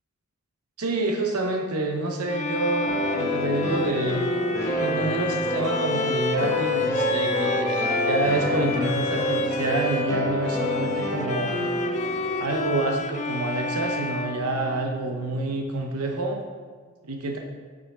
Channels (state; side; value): normal; both; correlation 0.19